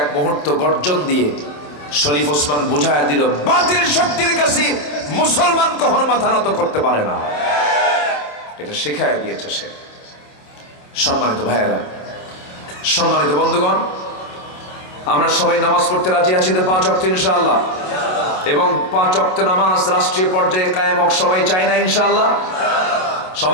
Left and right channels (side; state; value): right; late; 27 ms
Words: মুহূর্ত গর্জন দিয়ে শরীফ ওসমান বুঝায় দিল, বাতিল শক্তির কাছে মুসলমান কখনো মাথা নত করতে পারে না। এটা শেখায় দিয়েছে সে। সম্মানিত ভাইয়েরা, সম্মানিত বন্ধুগণ, আমরা সবাই নামাজ পড়তে রাজি আছি তো 5 ওয়াক্ত ইনশাআল্লাহ, এবং 5 ওয়াক্ত নামাজ রাষ্ট্রীয় পর্যায়ে কায়েম হোক সবাই চাই না ইনশাআল্লাহ?